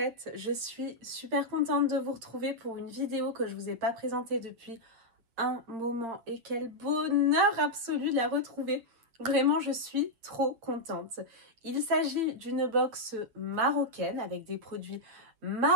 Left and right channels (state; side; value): late; left; 8.5 ms